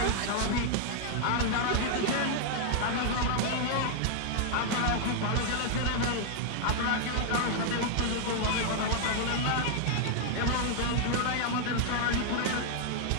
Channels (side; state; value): both; different; correlation -0.01